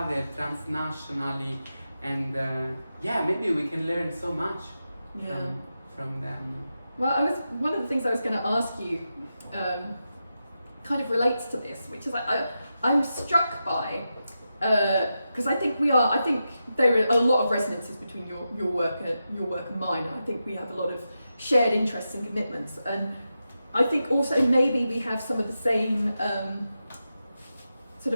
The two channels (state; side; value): inverted; both; correlation -0.89